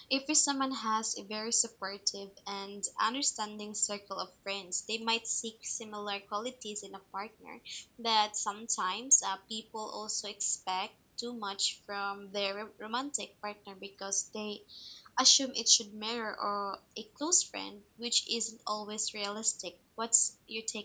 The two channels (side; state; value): both; identical; correlation 1.00